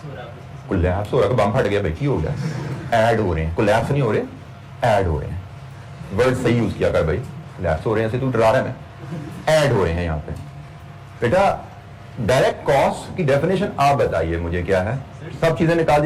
हो रहा है। कोलैप्स हो रहा है, बम फट गया भाई, की हो गया, ऐड हो रहे हैं, कोलैप्स नहीं हो रहे, ऐड हो रहे हैं। वर्ड सही यूज किया कर भाई, कोलैप्स हो रहे हैं से तू डरा रहा है, मैं ऐड हो रहे हैं यहाँ पे। बेटा डायरेक्ट कॉस्ट की डेफिनेशन आप बताइए मुझे क्या है, सब चीजें निकाल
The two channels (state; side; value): identical; both; correlation 1.00